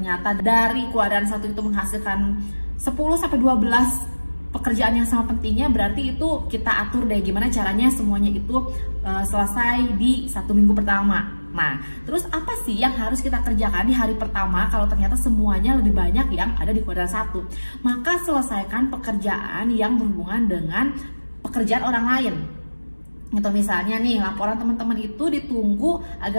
dari kuadran 1 itu menghasilkan 10-12 pekerjaan yang sama pentingnya, berarti itu kita atur deh gimana caranya semuanya itu selesai di 1 minggu pertama. Nah, terus apa sih yang harus kita kerjakan di hari pertama kalau ternyata semuanya lebih banyak yang ada di kuadran 1? Maka selesaikan pekerjaan yang berhubungan dengan pekerjaan orang lain. Gitu, misalnya nih laporan teman-teman itu ditunggu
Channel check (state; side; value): inverted; both; correlation -1.00